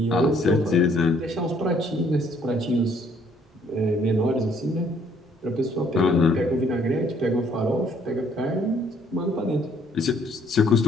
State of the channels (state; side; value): normal; both; correlation 0.64